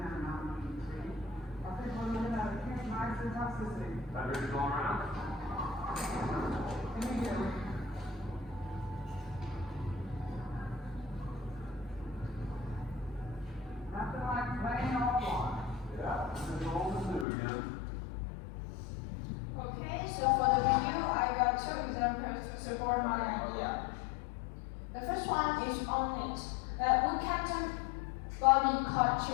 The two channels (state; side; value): drops out; right; at 17.2 s